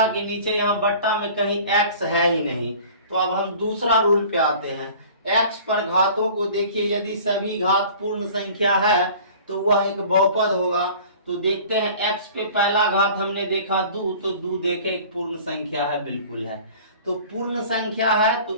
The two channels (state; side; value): inverted; both; correlation -0.45